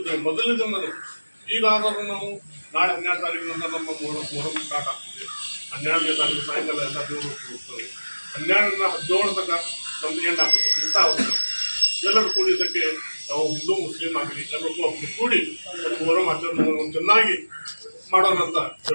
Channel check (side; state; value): both; inverted; correlation -1.00